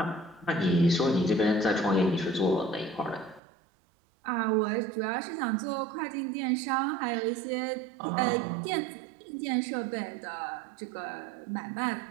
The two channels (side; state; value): left; drops out; at 3.4 s